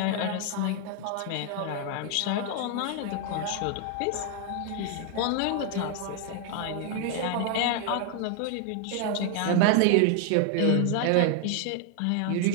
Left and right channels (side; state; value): both; different; correlation 0.00